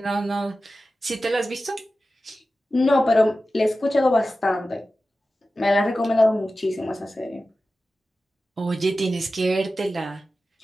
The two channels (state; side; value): normal; both; correlation 0.94